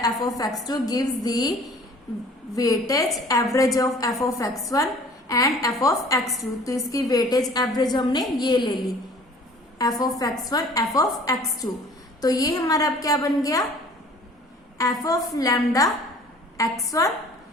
f of x2 gives the weightage average of f of x1 and f of x2. तो इसकी वेटेज एवरेज हमने ये ले ली, f of x1 f of x2. तो ये हमारा अब क्या बन गया, f of lambda x1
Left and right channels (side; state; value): both; normal; correlation 0.50